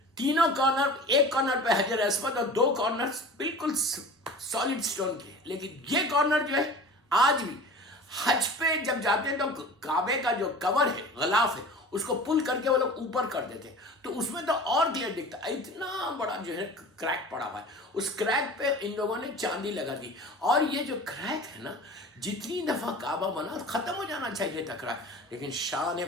تینوں کارنر, ایک کارنر پہ حجر اسود اور 2 کارنر بالکل سالڈ سٹون کی ہے. لیکن یہ کارنر جو ہے آج بھی حج پہ جب جاتے ہیں تو کعبے کا جو کور ہے, غلاف ہے, اس کو پل کر کے وہ لوگ اوپر کر دیتے ہیں تو اس میں تو اور کلیئر دکھتا ہے. اتنا بڑا جو ہے کریک پڑا ہوا ہے, اس کریک پہ ان لوگوں نے چاندی لگا دی. اور یہ جو کریک ہے نا جتنی دفعہ کعبہ بنا ختم ہو جانا چاہیے تھا کریک, لیکن شان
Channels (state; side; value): normal; both; correlation 0.38